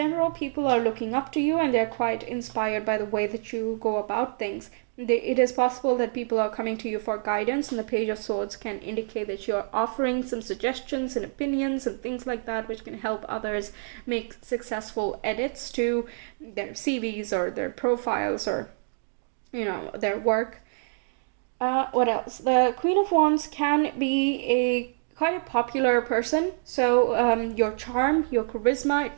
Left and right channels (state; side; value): silent; left; digital silence